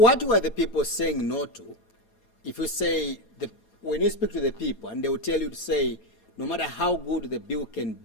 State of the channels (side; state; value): right; late; 4.2 ms